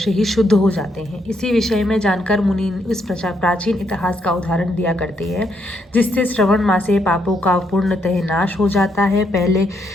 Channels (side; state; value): both; normal; correlation 0.76